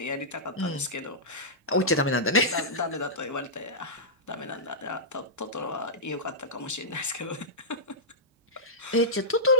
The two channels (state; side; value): normal; both; correlation -0.12